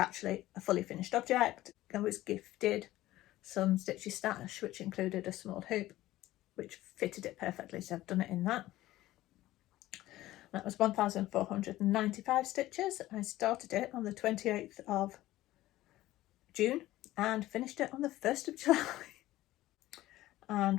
a fully finished object. I was gifted some Stitchy stash, which included a small hoop, which fitted it perfectly, so I've done it in that. That was 1,495 stitches. I started it on the 28th of June and finished it on the 1st of July.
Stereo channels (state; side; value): quieter; right; 16.0 dB